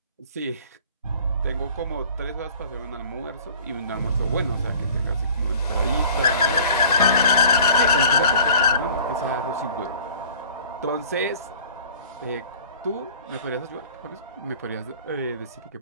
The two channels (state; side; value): inverted; both; correlation -0.48